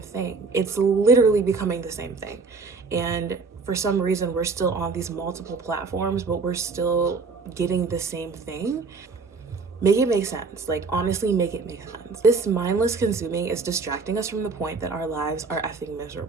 thing. It's literally becoming the same thing. And for some reason, we're still on these multiple platforms, but we're still getting the same thing. Make it make sense. Like, honestly, make it make sense. This mindless consuming is distracting us from the point that our lives are effing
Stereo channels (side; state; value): left; quieter; 4.5 dB